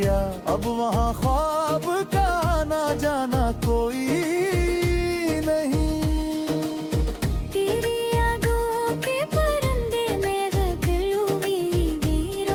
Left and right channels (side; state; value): both; identical; correlation 1.00